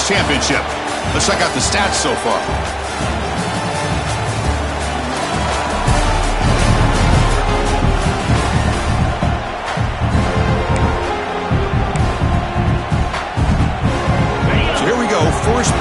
championship. Let's check out the stats so far. First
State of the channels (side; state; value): both; identical; correlation 1.00